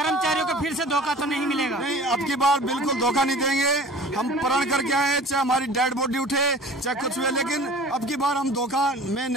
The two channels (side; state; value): both; normal; correlation 0.44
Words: को फिर से धोखा तो नहीं मिलेगा? नहीं, अब की बार बिल्कुल धोखा नहीं देंगे। हम प्रण करके आए, चाहे हमारी डेड बॉडी उठे चाहे कुछ हुए, लेकिन अब की बार हम धोखा में